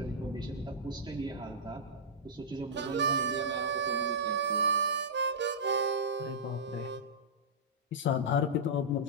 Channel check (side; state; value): both; normal; correlation -0.13